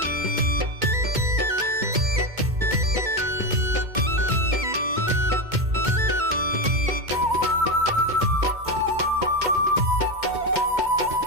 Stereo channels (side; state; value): left; late; 2.2 ms